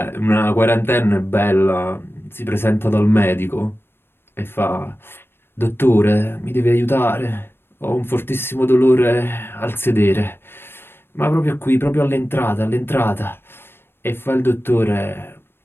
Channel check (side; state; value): right; late; 0.11 ms